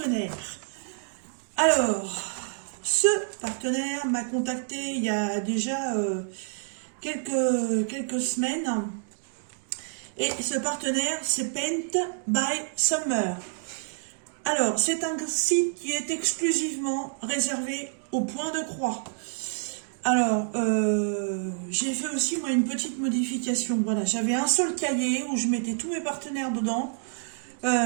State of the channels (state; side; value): silent; left; digital silence